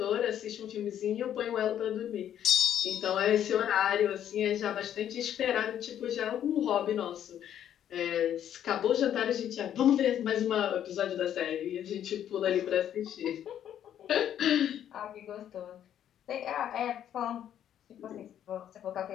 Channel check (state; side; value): quieter; right; 10.3 dB